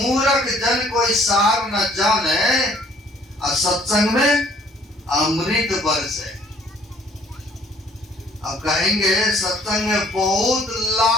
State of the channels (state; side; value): normal; both; correlation 0.60